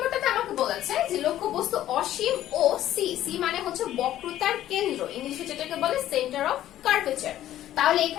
আমাকে বলেছে যে লক্ষ্যবস্তু অসীম ও সি মানে বক্রতার কেন্দ্র, ইংলিশে যেটাকে বলে সেন্টার অফ কার্ভেচার। তাহলে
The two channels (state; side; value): quieter; right; 12.8 dB